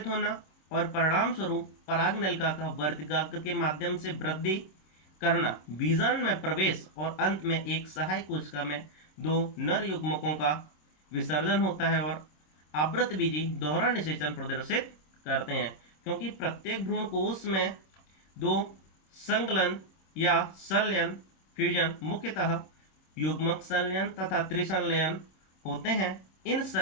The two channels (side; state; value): right; late; 26 ms